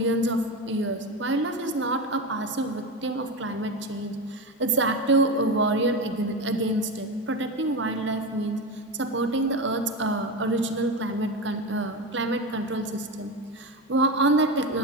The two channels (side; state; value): both; normal; correlation 0.19